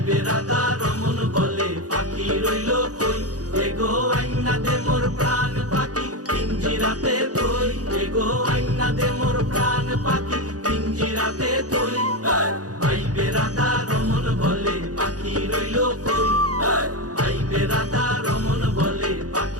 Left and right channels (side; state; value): left; late; 0.67 ms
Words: রাধা রমন বলে পাখি রইল কই, এগো আইনা দে মোর প্রাণ পাখি পিঞ্জিরাতে তুই, এগো আইনা দে মোর প্রাণ পাখি পিঞ্জিরাতে তুই। আইবে রাধা রমন বলে পাখি রইল কই, আইবে রাধা রমন বলে